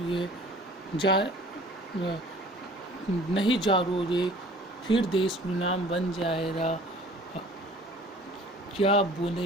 जा नहीं जागोगे फिर देश गुलाम बन जाएगा। क्या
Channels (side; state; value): both; normal; correlation 0.49